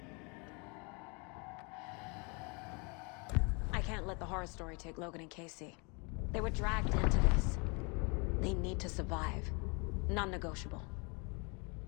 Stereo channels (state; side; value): quieter; right; 31.6 dB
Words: I can't let the horror story take Logan and Casey. They were dragged into this. They need to survive. Non-negotiable.